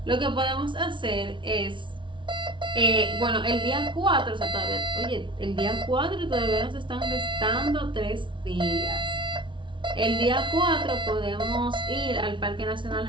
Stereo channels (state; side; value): late; left; 0.24 ms